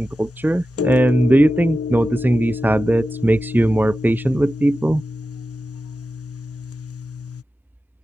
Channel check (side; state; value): both; normal; correlation 0.92